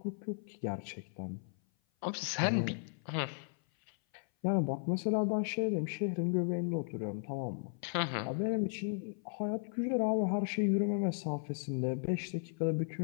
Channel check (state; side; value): silent; right; 54 dB below the other